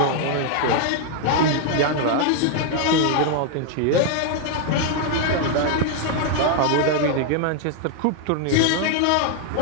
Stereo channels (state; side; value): different; both; correlation 0.00